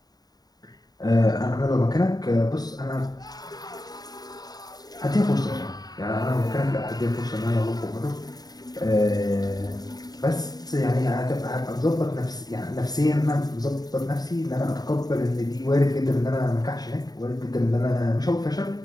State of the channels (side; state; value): right; late; 0.19 ms